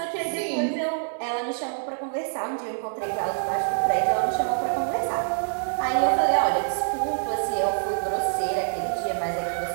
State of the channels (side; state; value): left; silent; digital silence